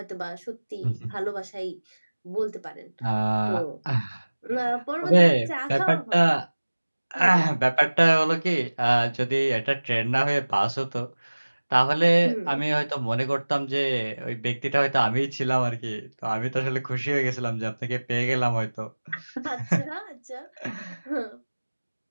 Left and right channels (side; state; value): both; inverted; correlation -1.00